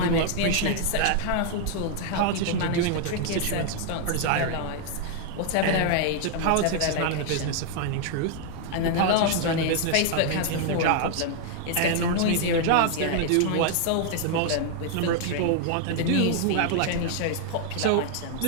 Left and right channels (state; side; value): different; both; correlation 0.00